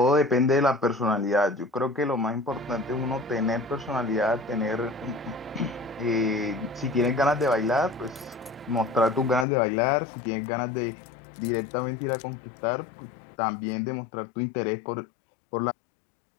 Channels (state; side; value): drops out; right; at 9.5 s